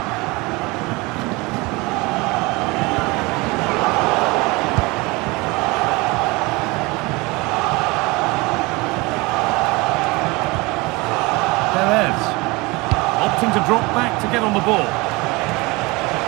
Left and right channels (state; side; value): quieter; left; 24.3 dB